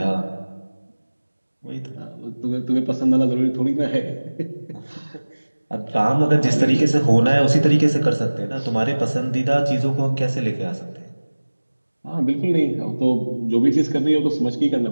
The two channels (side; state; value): both; inverted; correlation -1.00